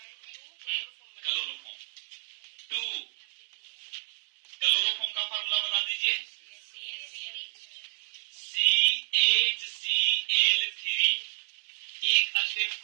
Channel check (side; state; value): left; silent; digital silence